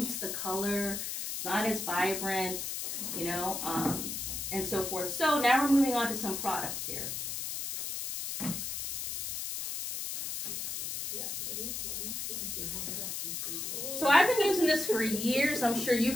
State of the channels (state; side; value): noise; left; hiss, 4 dB below the sound